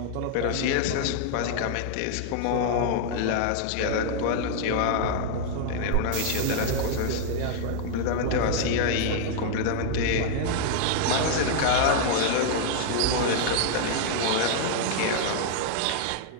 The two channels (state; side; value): different; both; correlation -0.01